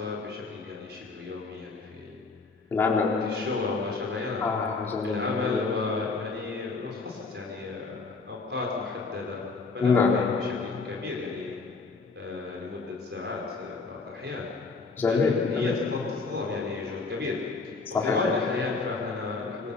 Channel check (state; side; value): quieter; right; 4.1 dB